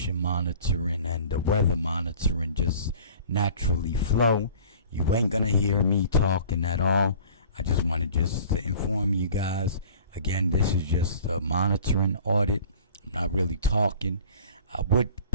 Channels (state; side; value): inverted; both; correlation -0.46